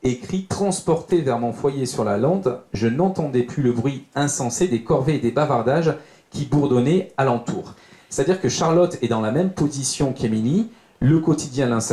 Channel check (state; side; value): identical; both; correlation 1.00